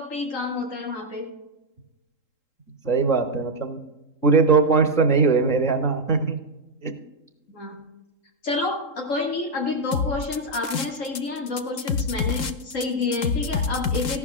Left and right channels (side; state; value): right; late; 3.8 ms